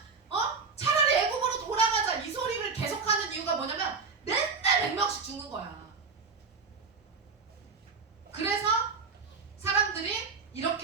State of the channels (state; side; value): quieter; left; 4.8 dB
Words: 차라리 애굽으로 돌아가자 이 소리를 계속하는 이유가 뭐냐면 맨날 100명씩 죽는 거야. 그래서 사람들이